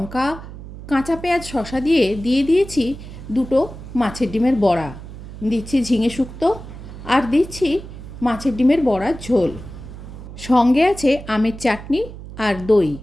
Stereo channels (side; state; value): right; noise; hum, 13 dB below the sound